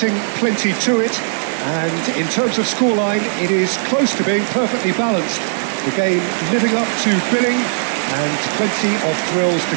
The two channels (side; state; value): left; silent; 58 dB below the other